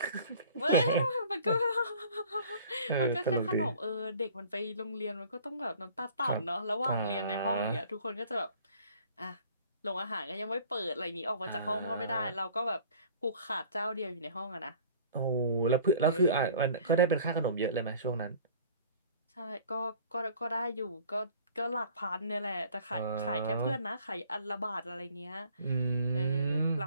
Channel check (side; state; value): both; inverted; correlation -0.50